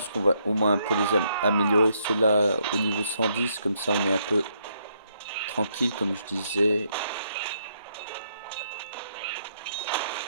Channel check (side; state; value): both; inverted; correlation -0.74